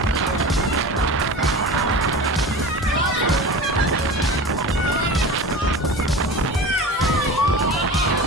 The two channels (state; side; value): normal; both; correlation 0.32